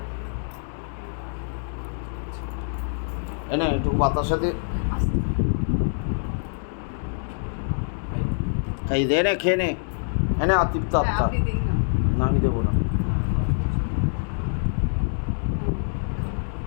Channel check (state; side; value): silent; right; digital silence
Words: এনে একটু বাতার সাথে এই দে, নে খেয়ে নে। এনে আতিপ্ত আত্মা না, আমি দেবো না।